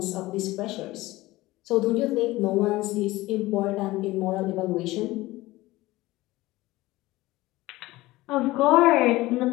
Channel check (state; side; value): quieter; right; 18.7 dB